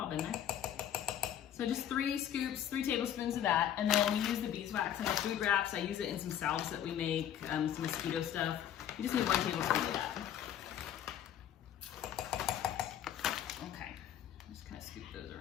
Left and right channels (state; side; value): quieter; right; 10.3 dB